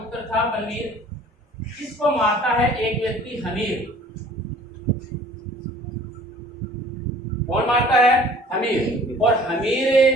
था बलवीर। इसको मारता है एक व्यक्ति हमीर। कौन मारता है? हमीर। और हमीर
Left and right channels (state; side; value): normal; both; correlation 0.51